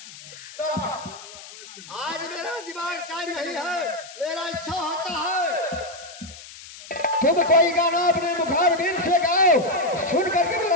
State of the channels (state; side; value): noise; left; hiss, 16 dB below the sound